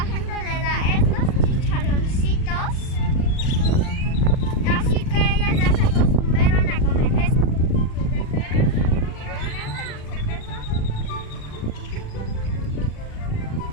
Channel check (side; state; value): right; late; 39 ms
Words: gente le da estos chicharroncitos, así que ellas ya se acostumbraron a comer esto.